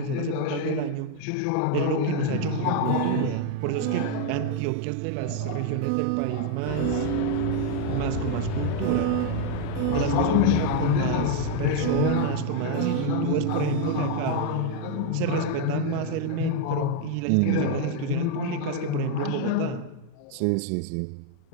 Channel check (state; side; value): different; both; correlation 0.00